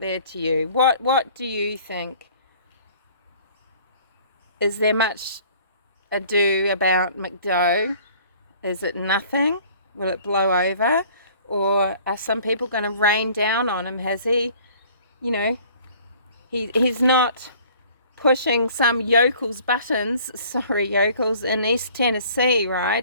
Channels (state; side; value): inverted; both; correlation -0.52